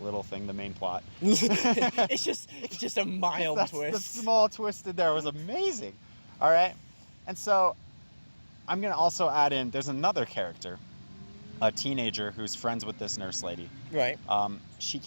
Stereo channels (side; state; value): both; inverted; correlation -1.00